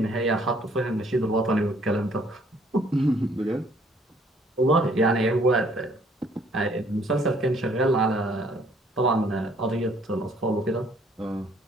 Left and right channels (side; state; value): both; normal; correlation 0.62